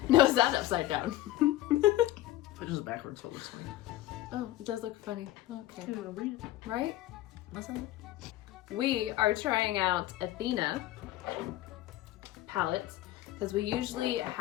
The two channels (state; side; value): quieter; right; 15.3 dB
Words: No, is that upside down? It is backwards, so it looks funny. Oh, it does look funny. Okay. You wanna read it? Right? What's that? We are trying out Athena palettes because we usually